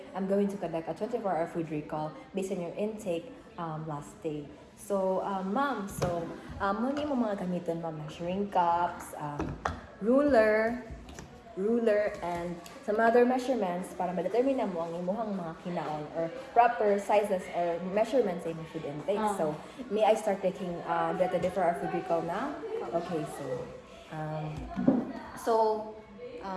I'm going to conduct a 24-hour food recall based on your intake last day. So, Ma'am, muna mo mga gamiton, Ma'am, measuring cups, ruler, and some other measurements para ma-determine mo ang imuhang mga kinaon or proper sizes or measurements sa imong food intake. So, may I start taking the 24-hour food recall now? Okay,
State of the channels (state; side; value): identical; both; correlation 1.00